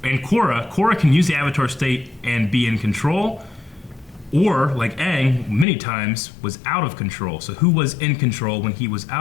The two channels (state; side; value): drops out; right; at 5.7 s